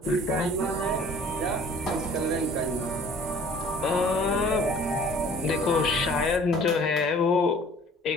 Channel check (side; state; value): both; normal; correlation 0.51